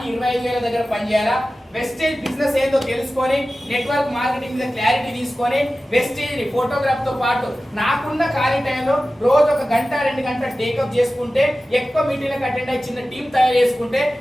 25,000 దగ్గర పనిచేయాలా? వెస్టేజ్ బిజినెస్ ఏందో తెలుసుకొని, నెట్వర్క్ మార్కెటింగ్ మీద క్లారిటీ తీసుకొని, వెస్టేజ్ ఫోటోగ్రాఫ్ తో పాటు నాకున్న ఖాళీ టైంలో రోజు 1 గంట 2 గంటలు టేకప్ చేసుకుంటే, ఎక్కువ మీటింగ్లకు అటెండ్ అయ్యి చిన్న టీం తయారు చేసుకుంటే,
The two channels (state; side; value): normal; both; correlation 0.95